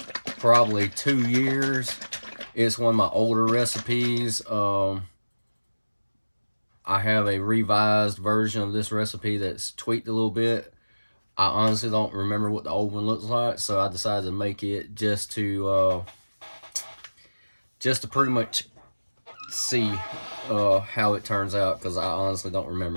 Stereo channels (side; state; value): both; inverted; correlation -1.00